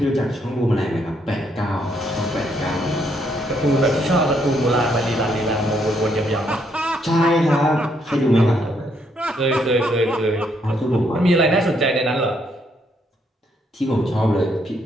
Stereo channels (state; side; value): normal; both; correlation 0.73